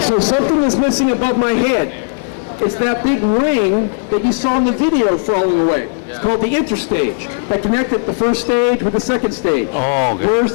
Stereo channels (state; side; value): silent; right; digital silence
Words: So something is missing above my head. It's that big ring that you saw in the video falling away. It's called the interstage that connected the first stage with the second stage. Oh, okay. Where's